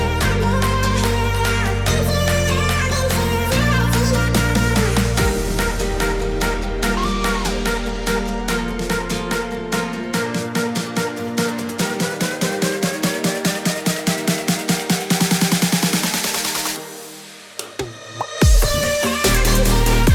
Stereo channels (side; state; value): both; identical; correlation 1.00